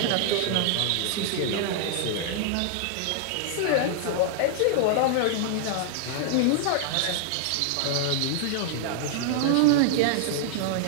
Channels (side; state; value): both; different; correlation -0.01